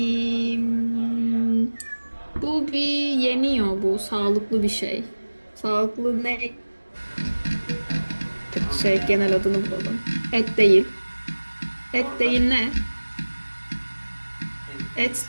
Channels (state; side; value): inverted; both; correlation -1.00